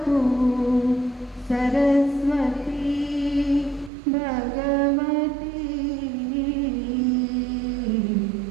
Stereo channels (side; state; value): left; drops out; at 3.9 s